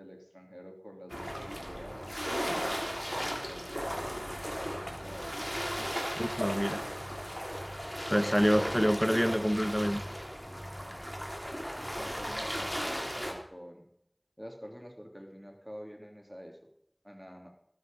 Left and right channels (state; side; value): identical; both; correlation 1.00